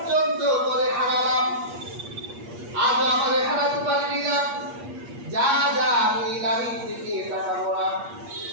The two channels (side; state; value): left; late; 8.4 ms